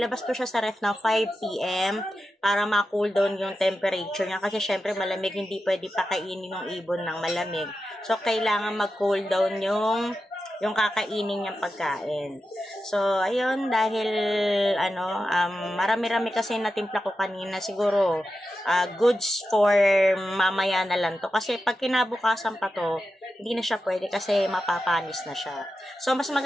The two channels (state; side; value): normal; both; correlation 0.91